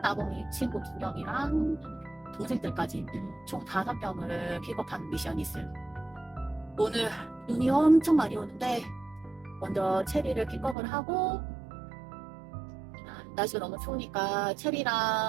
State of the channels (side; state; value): left; drops out; at 10.8 s